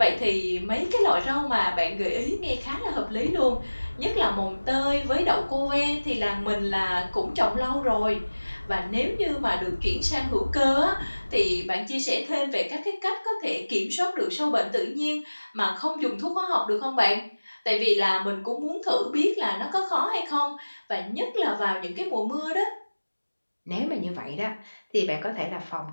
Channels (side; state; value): both; inverted; correlation -1.00